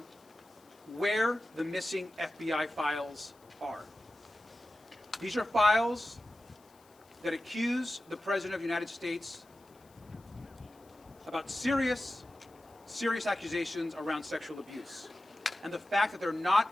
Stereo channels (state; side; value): noise; left; hiss, 30 dB below the sound